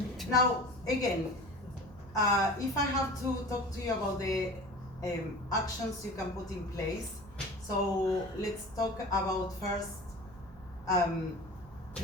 Now, again, if I have to talk to you about the actions you can put in place, so let's talk about first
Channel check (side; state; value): right; noise; hum, 20 dB below the sound